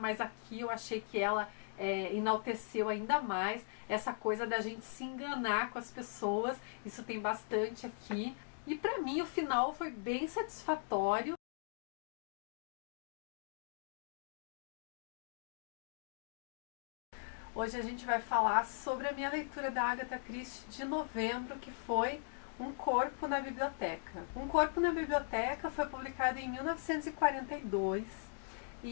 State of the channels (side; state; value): right; silent; digital silence